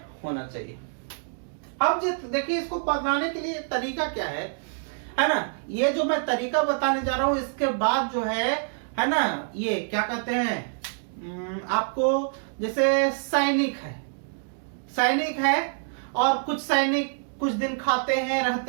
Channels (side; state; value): left; silent; digital silence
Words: होना चाहिए। अब देखिए इसको बताने के लिए तरीका क्या है ना। ये जो मैं तरीका बताने जा रहा हूं, इसके बाद जो है ना, ये क्या कहते हैं, आपको जैसे सैनिक है और कुछ सैनिक कुछ दिन खाते हैं